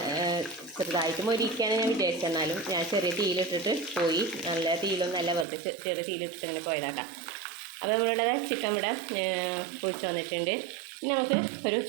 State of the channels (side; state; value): left; drops out; at 5.5 s